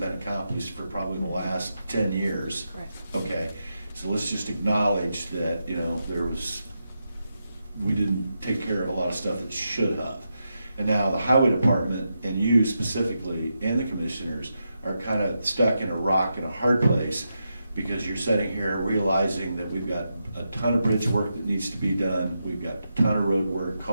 accomplished for probably the last 10 years. Correct. Okay, so let's just acknowledge that, we didn't take care of a lot of stuff that should have. And now the highway department, and you specifically, and the commissioners, are kind of stuck in a rock and a hard place, because you're sitting here realizing that we've got a ton of bridge work that needs to be done, we've got a ton of road work,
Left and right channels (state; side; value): inverted; both; correlation -0.86